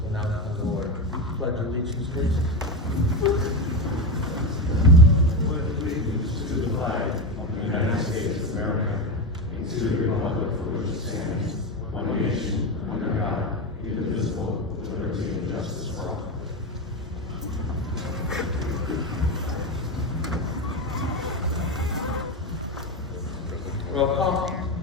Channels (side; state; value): both; normal; correlation 0.15